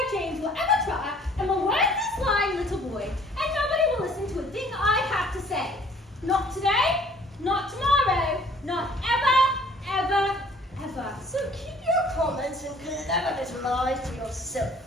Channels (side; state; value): both; normal; correlation 0.56